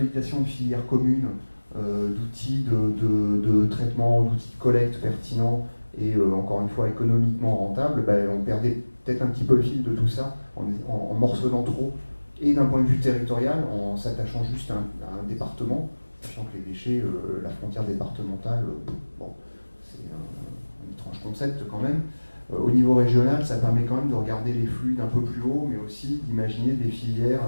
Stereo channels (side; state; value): both; inverted; correlation -1.00